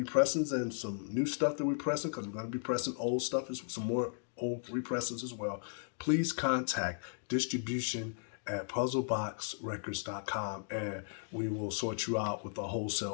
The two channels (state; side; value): silent; right; digital silence